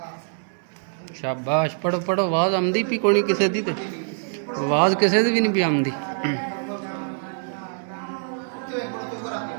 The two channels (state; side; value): silent; left; digital silence